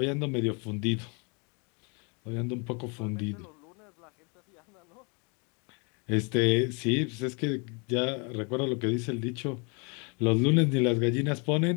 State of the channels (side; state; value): right; quieter; 34.0 dB